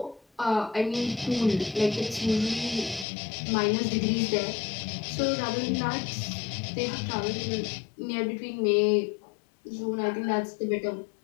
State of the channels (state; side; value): drops out; right; at 3.1 s